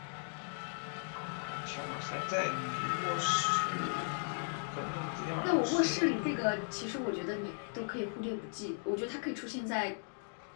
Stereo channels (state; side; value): silent; right; digital silence